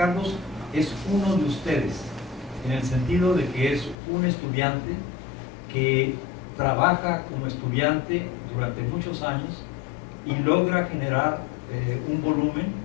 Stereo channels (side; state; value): right; drops out; at 4.0 s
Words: es uno de ustedes, en el sentido de que es un estudiante que trabaja como estudiante durante muchos años y logra generar un volumen,